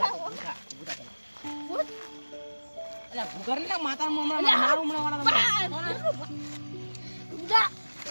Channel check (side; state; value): both; inverted; correlation -1.00